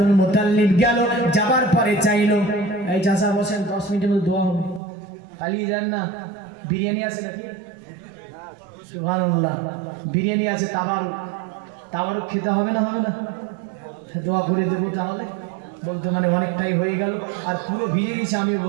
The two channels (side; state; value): left; drops out; at 4.8 s